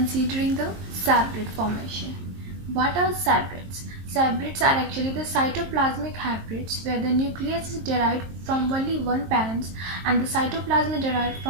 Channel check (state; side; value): late; left; 23 ms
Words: the hybrid formation. What are hybrids? Hybrids are actually the cytoplasmic hybrids where the nucleus is derived from only one parent and the cytoplasm is derived